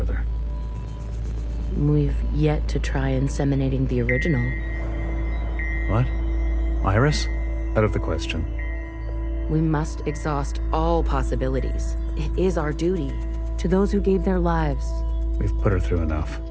We've yet to try inseminating the original. What? Iris? Out of the question. We must exhaust all possibilities. It is our duty to those who gave their lives. We've put her through enough.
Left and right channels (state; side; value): identical; both; correlation 1.00